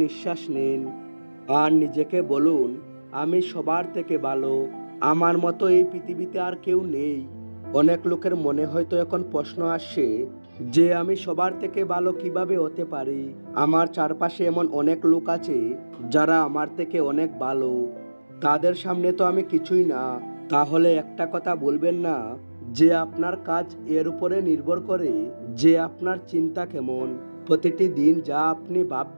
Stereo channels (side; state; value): both; inverted; correlation -1.00